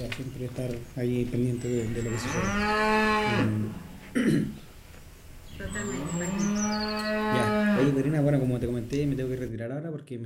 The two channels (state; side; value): identical; both; correlation 1.00